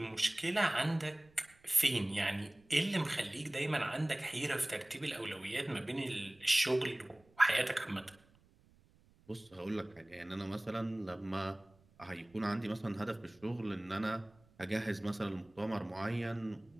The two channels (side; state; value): right; noise; rumble, 30 dB below the sound